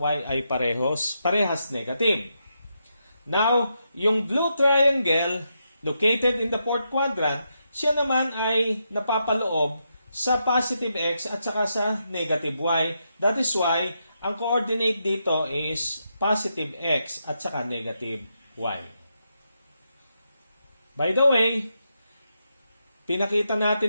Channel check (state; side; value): inverted; both; correlation -0.83